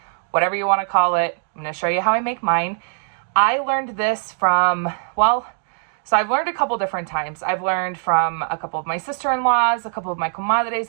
whatever you want to call it. I'm going to show you how I make mine. I learned this from, so I've learned a couple different times. I've learned from a couple of my sister-in-laws, a couple of my comadres,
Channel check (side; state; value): left; silent; digital silence